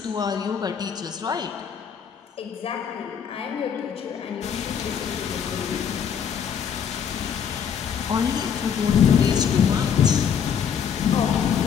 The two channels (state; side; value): quieter; right; 7.7 dB